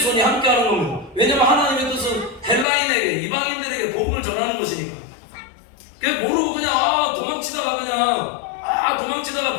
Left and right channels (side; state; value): right; drops out; at 2.7 s